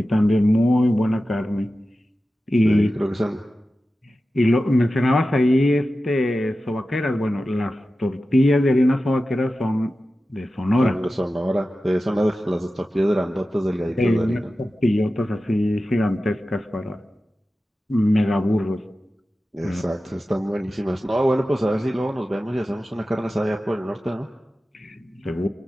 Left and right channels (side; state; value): both; normal; correlation 0.94